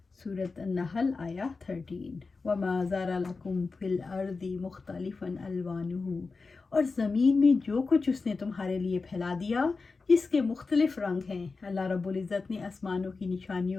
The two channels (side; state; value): right; quieter; 4.2 dB